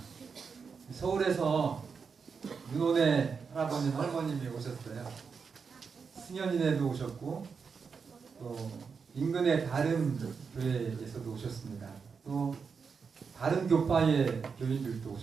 서울에서 윤원의 할아버님 할머님이 오셨어요. 승현이네도 오셨고 또 인근의 다른 교회에서도 오셨습니다. 또 다른 교파의 교인들도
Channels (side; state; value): left; quieter; 5.7 dB